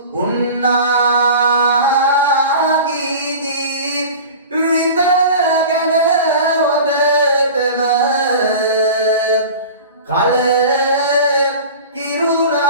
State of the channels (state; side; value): inverted; both; correlation -0.36